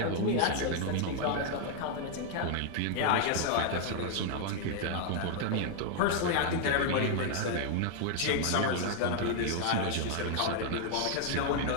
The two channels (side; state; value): both; different; correlation 0.00